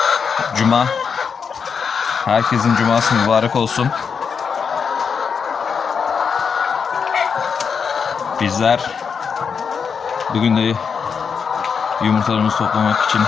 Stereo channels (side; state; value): right; quieter; 6.2 dB